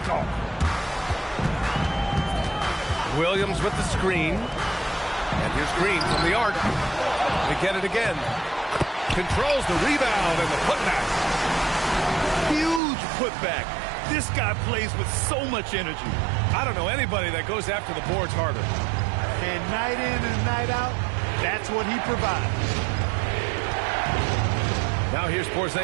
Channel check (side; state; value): left; drops out; at 12.8 s